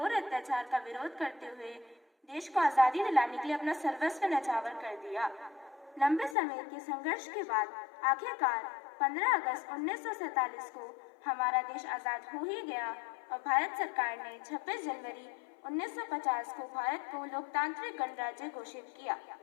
अत्याचार का विरोध करते हुए देश को आज़ादी दिलाने के लिए अपना सर्वस्व न्यौछावर कर दिया। लंबे समय के संघर्ष के बाद आखिरकार 15 अगस्त 1947 को हमारा देश आज़ाद हो ही गया और भारत सरकार ने 26 जनवरी 1950 को भारत को लोकतांत्रिक गणराज्य घोषित किया।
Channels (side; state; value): right; drops out; at 6.4 s